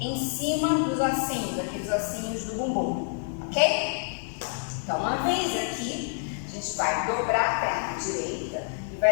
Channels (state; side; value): silent; right; 60 dB below the other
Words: cima dos ossinhos, aqueles ossinhos do bumbum, ok? Então, uma vez aqui, a gente vai dobrar a perna direita e